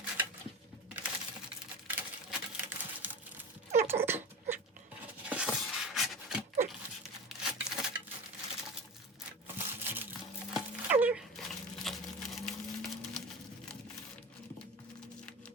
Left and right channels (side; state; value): both; normal; correlation 0.30